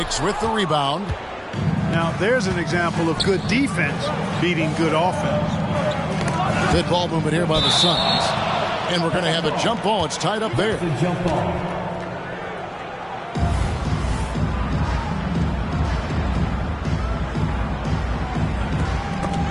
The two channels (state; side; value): identical; both; correlation 1.00